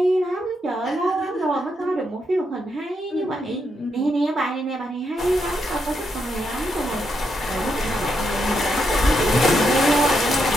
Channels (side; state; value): both; normal; correlation 0.81